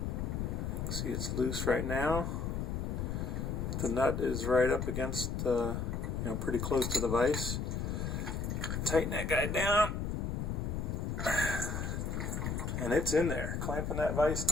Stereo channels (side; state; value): left; noise; rumble, 2 dB below the sound